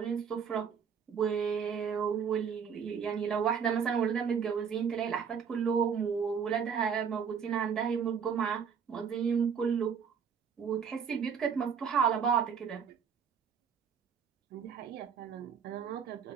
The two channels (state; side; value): quieter; left; 6.9 dB